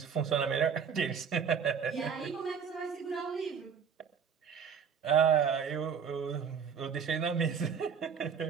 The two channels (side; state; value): left; quieter; 6.9 dB